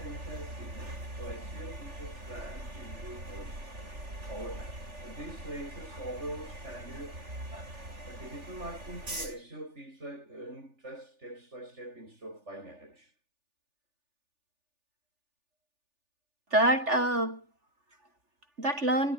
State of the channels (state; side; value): late; left; 3.4 ms